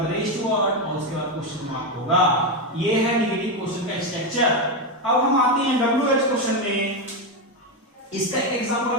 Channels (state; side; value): normal; both; correlation 0.09